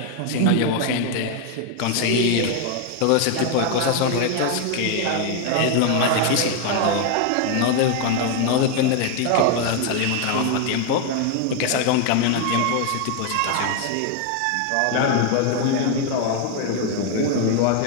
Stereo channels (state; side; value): different; both; correlation 0.01